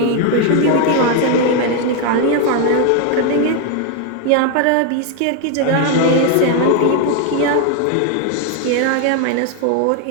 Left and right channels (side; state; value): both; different; correlation 0.01